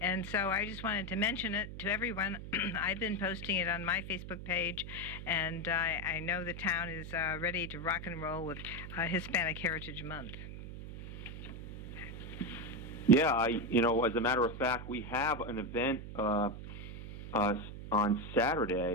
so I just wanted to mention it to everyone. I've been posting it on my Facebook page, and I know the town is ready to rock and roll with Hispanic Heritage Month. Yeah, as a matter of fact, we have an event on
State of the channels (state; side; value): noise; right; hum, 10 dB below the sound